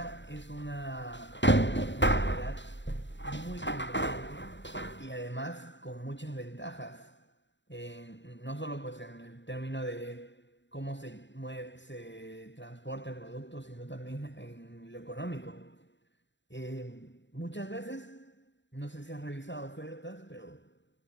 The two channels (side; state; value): right; late; 0.53 ms